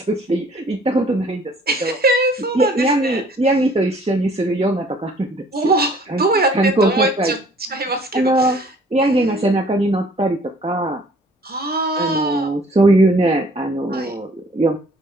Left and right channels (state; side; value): normal; both; correlation 0.55